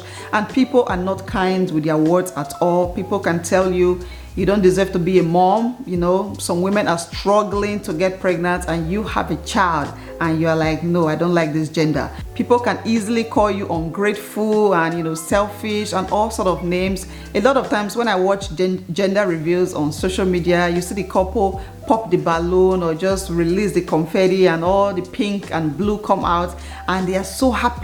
and people are not kind with their words at all. People can tell you you don't deserve to be a mom. Some women are struggling to get pregnant and you have a child and you're like, no, I don't like this gender. People can easily call you ungrateful and selfish and all sort of names. A lot of times when I watch gender reviews on social media, you see the couple pop the balloon or just release the confetti and all the pink and blue come out, and they are so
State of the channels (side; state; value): both; identical; correlation 1.00